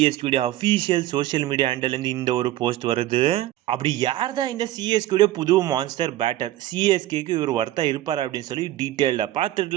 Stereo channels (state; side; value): quieter; left; 14.6 dB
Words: அஃபீஷியல் சோஷியல் மீடியா ஹேண்டல்லேருந்து இந்த ஒரு போஸ்ட் வருது. அப்படி யார் தான் இந்த சிஎஸ்கேடைய புது மான்ஸ்டர் பேட்டர்? சிஎஸ்கேக்கு இவர் ஒர்த்தா இருப்பார் அப்படின்னு சொல்லி டீட்டெயிலாக